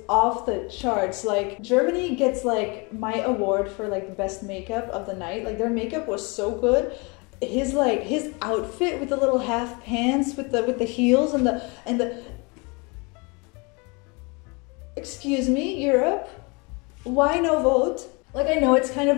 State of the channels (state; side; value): quieter; right; 29.4 dB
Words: off the charts. Like, Germany gets, like, my award for, like, the best makeup of the night. Like, their makeup was so good. His outfit with the little half pants with the heels and the excuse me, Europe, why no vote? Like, I know it's kind of